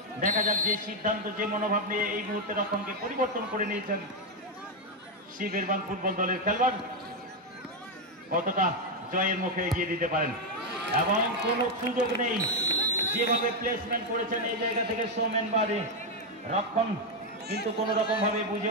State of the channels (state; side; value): normal; both; correlation 0.03